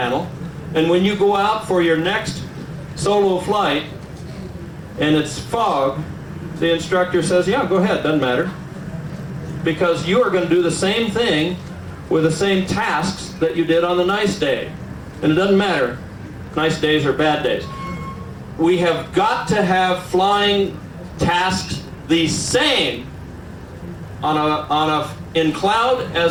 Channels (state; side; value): identical; both; correlation 1.00